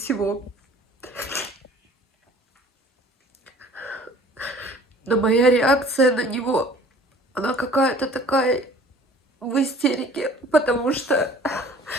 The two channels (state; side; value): normal; both; correlation 0.50